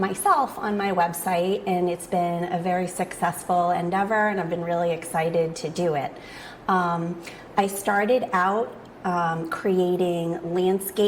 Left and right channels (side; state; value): both; identical; correlation 1.00